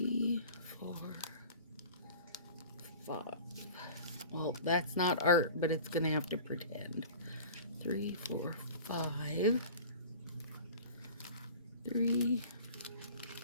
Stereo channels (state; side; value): inverted; both; correlation -0.40